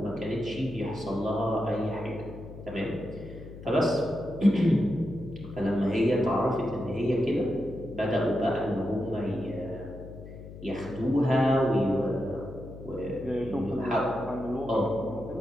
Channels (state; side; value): noise; left; hum, 14 dB below the sound